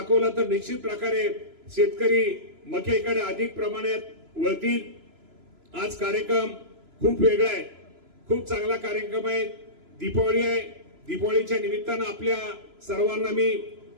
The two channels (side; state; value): left; late; 3.0 ms